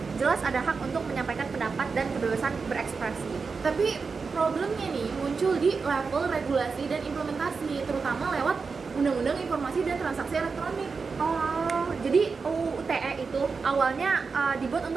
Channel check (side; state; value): left; quieter; 4.9 dB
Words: jelas ada hak untuk menyampaikan pendapat dan kebebasan berekspresi. Tapi problemnya nih muncul di level regulasi dan implementasi, terutama lewat Undang-Undang Informasi dan Transaksi Elektronik. Oh, jadi UU ITE itu awalnya dibuat